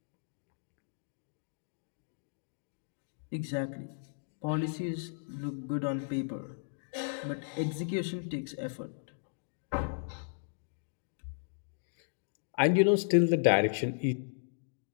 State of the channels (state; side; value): silent; right; digital silence